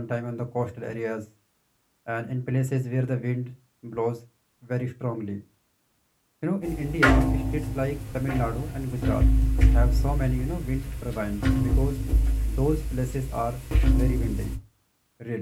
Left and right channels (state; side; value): identical; both; correlation 1.00